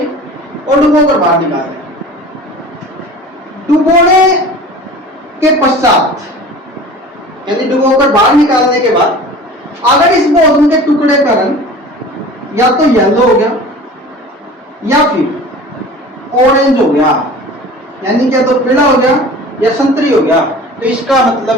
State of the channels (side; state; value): both; normal; correlation 0.40